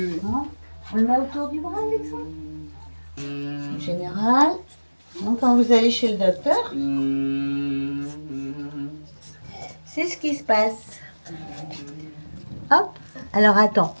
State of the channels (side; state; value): both; inverted; correlation -1.00